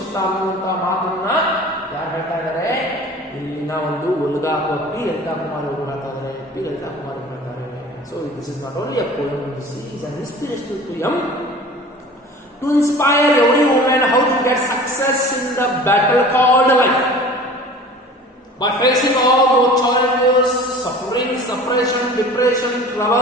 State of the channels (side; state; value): both; normal; correlation 0.42